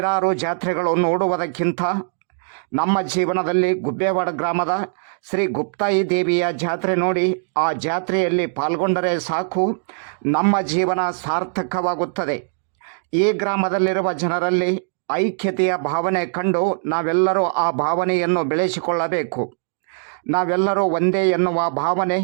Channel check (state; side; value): silent; left; digital silence